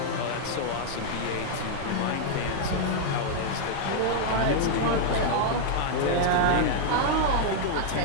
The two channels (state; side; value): different; both; correlation -0.01